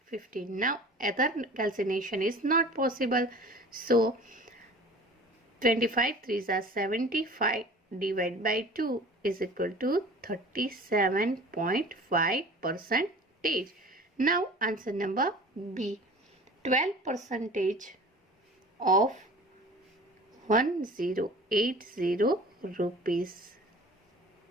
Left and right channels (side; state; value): both; normal; correlation 0.43